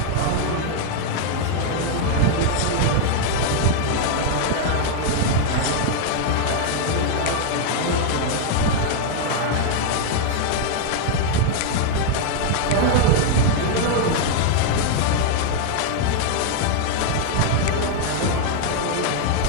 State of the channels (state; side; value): different; both; correlation 0.00